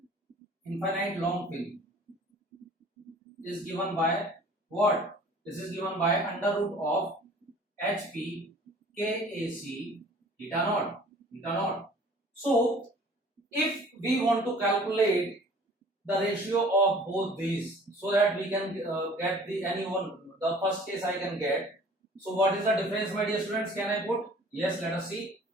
what? This is given by under root of HP KAC theta naught. So if we want to calculate the ratio of both these so that we can get the first case I can get. So what is the difference, my dear students? Can I put? Yes, let us see.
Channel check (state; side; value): normal; both; correlation 0.49